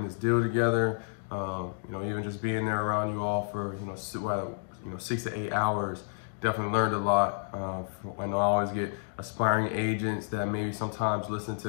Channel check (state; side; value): silent; right; digital silence